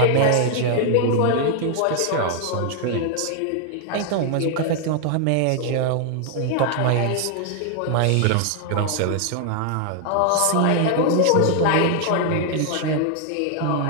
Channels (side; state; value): both; different; correlation 0.00